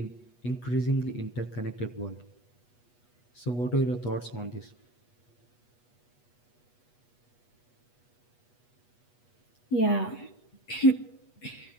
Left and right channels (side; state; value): right; late; 8.3 ms